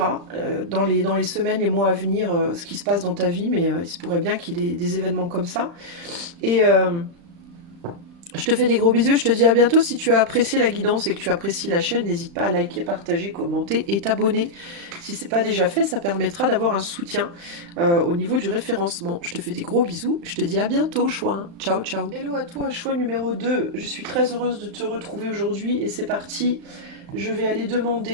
dans les semaines, les mois à venir, ce qui se passe dans ta vie, mais il se pourrait bien qu'il y ait des événements comme ça. Et je te fais des gros bisous, je te dis à bientôt. Si tu as apprécié la guidance et que tu apprécies la chaîne, n'hésite pas à liker, partager, commenter et t'abonner. Si ce n'est pas déjà fait, ça permettra d'avoir un soutien au niveau du référencement. Je te fais des gros bisous, je te dis à bientôt, choix. Ciao, ciao. Hello à toi, choix numéro 2. Je suis très heureuse de te retrouver aujourd'hui et c'est parti. Je vais aller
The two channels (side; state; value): left; late; 35 ms